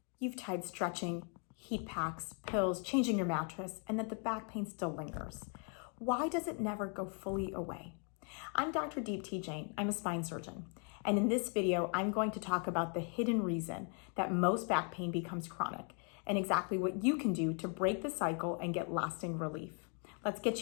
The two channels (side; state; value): right; quieter; 40.0 dB